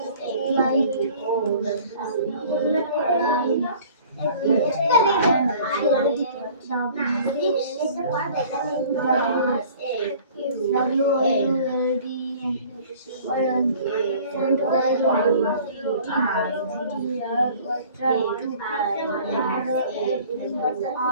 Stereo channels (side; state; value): both; inverted; correlation -0.49